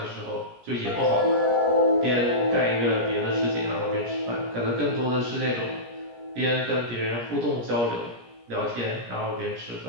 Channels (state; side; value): late; left; 17 ms